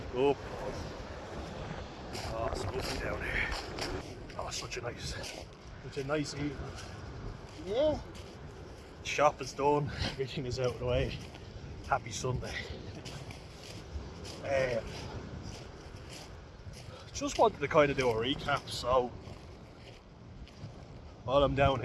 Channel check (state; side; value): identical; both; correlation 1.00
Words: Oh, oh, it's lovely down here. Oh, such a nice evening. Yeah. Shop is done, everything is out of the way. Happy Sunday. Just wanted to kind of do a recap, so while I'm down